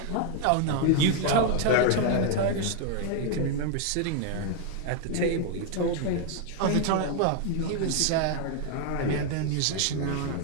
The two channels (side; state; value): both; different; correlation 0.00